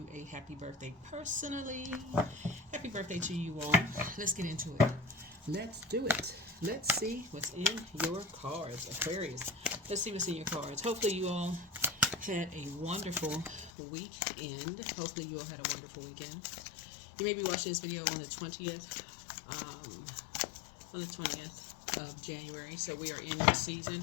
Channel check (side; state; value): right; drops out; at 13.7 s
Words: a happy birthday personally. Happy birthday to you all. Let's get into it. Let's do it. Let's see what's in your cards, Aquarius. Let's see what's in your cards. Hopefully you all had a wonderful weekend. Hopefully you all had a wonderful weekend. You may be watching this video on the 20th, of January. So we are in your